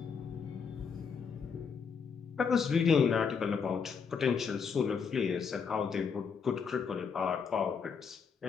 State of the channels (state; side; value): quieter; right; 6.0 dB